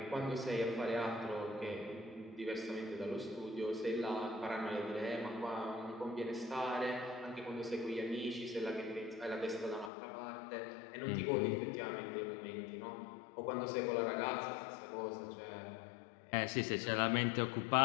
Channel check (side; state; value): right; drops out; at 9.9 s